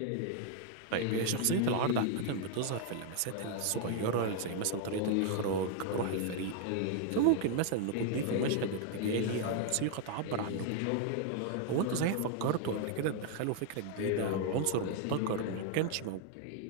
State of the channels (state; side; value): different; both; correlation 0.00